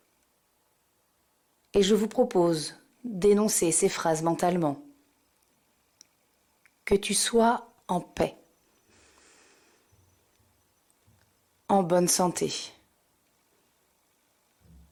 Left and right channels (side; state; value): both; identical; correlation 1.00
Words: Et je vous propose d'énoncer ces phrases mentalement. Que tu sois en paix, en bonne santé,